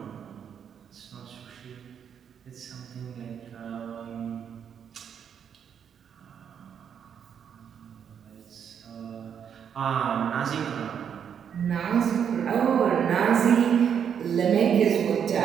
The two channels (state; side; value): quieter; left; 8.0 dB